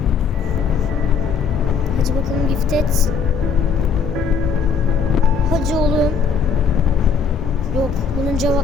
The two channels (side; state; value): right; quieter; 5.9 dB